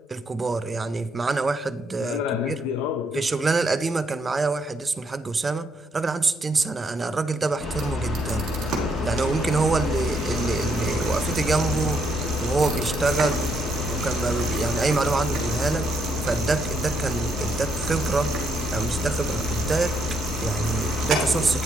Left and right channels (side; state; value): both; normal; correlation 0.74